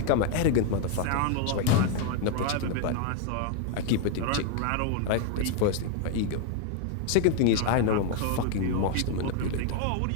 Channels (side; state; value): both; different; correlation 0.00